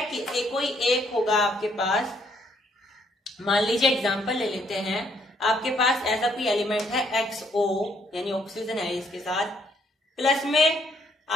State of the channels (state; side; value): normal; both; correlation 0.69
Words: कि कोई एक होगा आपके पास, मान लीजिए एग्जांपल ले लेते हैं, आपके पास ऐसा कोई एलिमेंट है XO, यानी ऑक्सीजन है इसके साथ, प्लस में